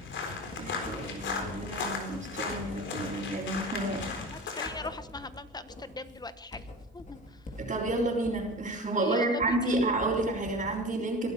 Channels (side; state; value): both; normal; correlation 0.33